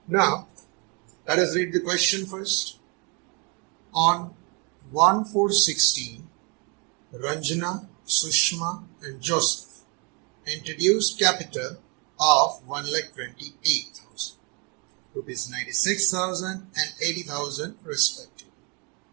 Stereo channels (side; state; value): left; quieter; 33.3 dB